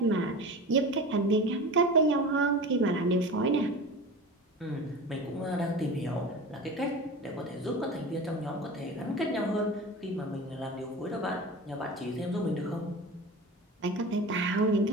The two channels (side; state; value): both; normal; correlation 0.32